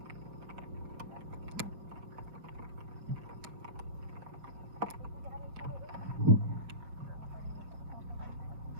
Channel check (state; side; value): late; left; 6.4 ms